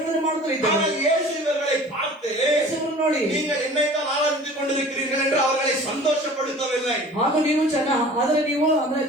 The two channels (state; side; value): normal; both; correlation 0.44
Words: ಮಾಡುತ್ತಿದ್ದರು. ஆனால் இயேசு இவர்களை பார்த்து ನೋಡಿ, நீங்கள் என்னைத்தான் ஆராதித்துக் கொண்டிருக்கிறீர்கள் என்று அவர்களை சந்தோஷப்படுத்தவில்லை. ಹಾಗೂ ನೀವು ಅಂದ್ರೆ